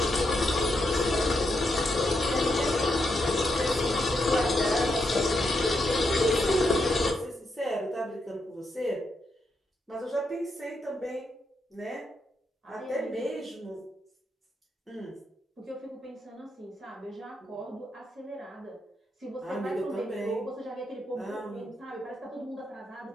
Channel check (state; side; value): normal; both; correlation 0.82